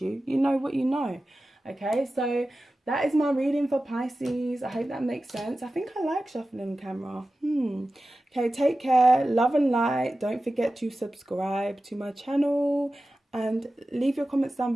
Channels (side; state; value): both; normal; correlation 0.94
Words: you. You know what you know. Okay, so that is my reading for Pisces. I hope that makes sense. I think I like shuffling camera. Okay, take care. Love and light. Don't forget to subscribe to my channel. And leave your comments down